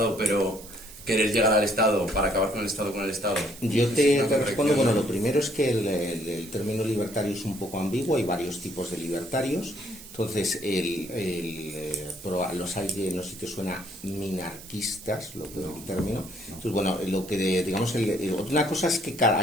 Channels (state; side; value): noise; right; hiss, 16 dB below the sound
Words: pero querer llegar al Estado para acabar con el Estado con el Estado. Yo te respondo, bueno, lo primero es que el término libertario es un poco ambiguo, hay varios tipos de libertarios. Entonces, los hay que, no sé si te suena, minarquistas, el término. Entonces, bueno, lo que digamos, una cosa es que